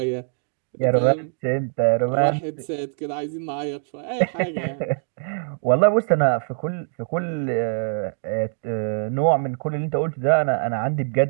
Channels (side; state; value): left; silent; digital silence